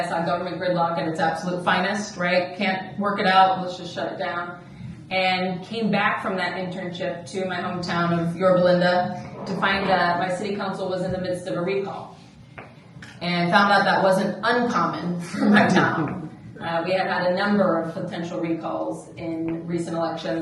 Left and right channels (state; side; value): identical; both; correlation 1.00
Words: saw government gridlock at its absolute finest, right? Can't work it out, let's just shut it down. And came back from that internship to my hometown of Yorba to find that my city council was in the midst of a recall. And found out that wasn't uncommon for my town. We had had a number of potential recalls in recent